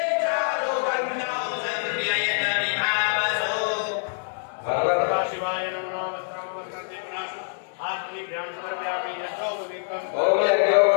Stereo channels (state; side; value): silent; right; digital silence